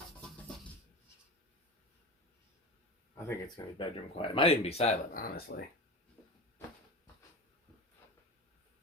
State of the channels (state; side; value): normal; both; correlation 0.28